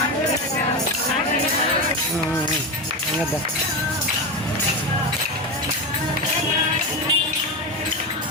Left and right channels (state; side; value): normal; both; correlation 0.16